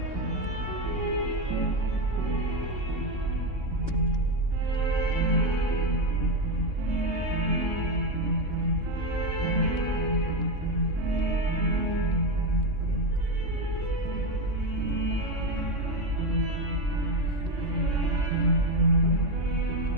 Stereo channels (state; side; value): late; left; 3.6 ms